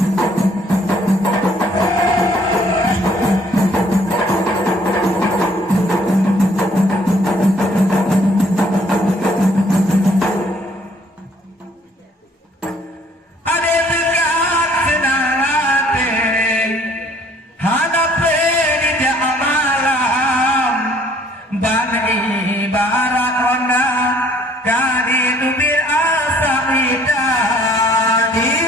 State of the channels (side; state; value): both; normal; correlation 0.61